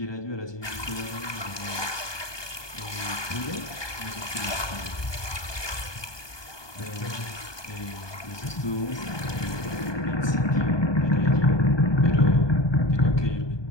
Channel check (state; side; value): late; right; 1.2 ms